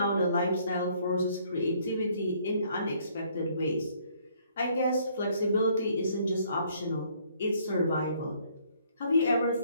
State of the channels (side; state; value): both; inverted; correlation -0.64